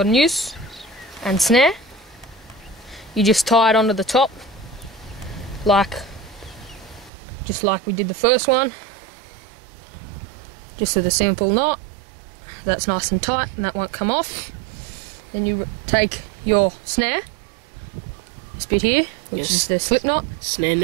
noose and snare, you just tie it onto the top, just like we did the first one, just with a simple knot. That's nice and tight and that won't come off. Then you take your snare, this bit here, which is the slip knot. Snare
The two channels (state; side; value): drops out; left; at 7.1 s